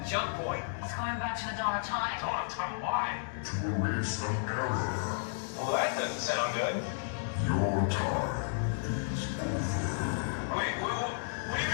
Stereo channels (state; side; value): silent; right; digital silence